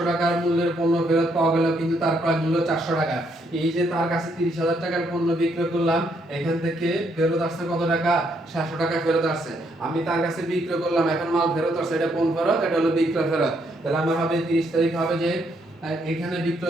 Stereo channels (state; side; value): normal; both; correlation 0.73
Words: টাকার মূল্যের পণ্য ফেরত পাওয়া গেল কিন্তু তার ক্রয় মূল্য 400 টাকা এই যে তার কাছে 30000 টাকার পণ্য বিক্রয় করলাম এখান থেকে ফেরত আসছে কত টাকা 700 টাকা ফেরত আসছে আমি তার কাছে বিক্রয় করলাম এখন মাল ফেরত আসছে এটা কোন ফেরত এটা হলো বিক্রয় ফেরত তাহলে আমার হবে 30 তারিখ হবে যে এখানে